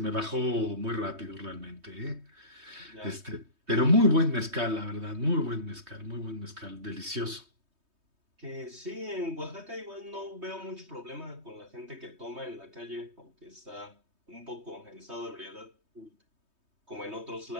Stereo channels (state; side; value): late; left; 3.2 ms